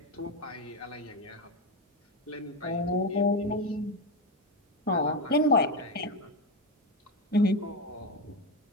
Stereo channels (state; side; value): normal; both; correlation 0.14